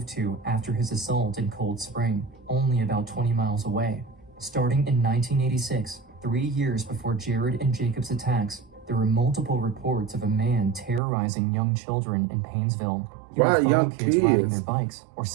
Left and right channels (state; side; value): drops out; left; at 11.0 s